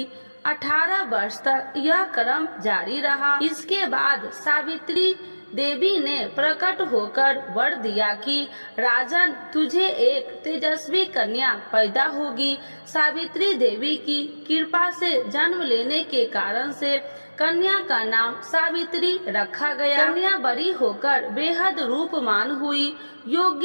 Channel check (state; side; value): inverted; both; correlation -1.00